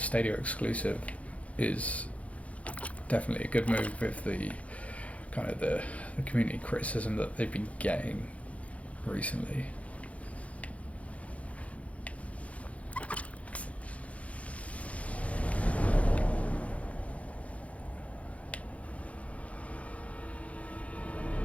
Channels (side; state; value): right; late; 0.065 ms